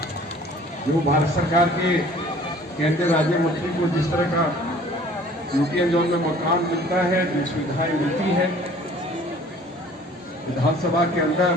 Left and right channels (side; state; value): both; normal; correlation 0.51